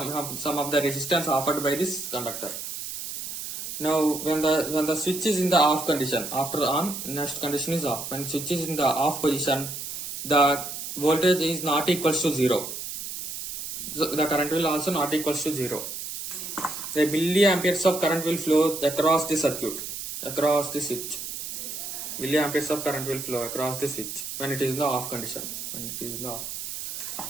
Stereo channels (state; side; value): noise; right; hiss, 7 dB below the sound